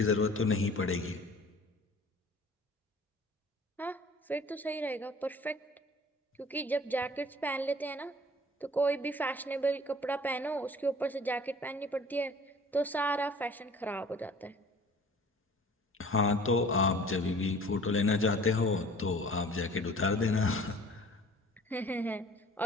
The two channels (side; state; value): both; normal; correlation 0.49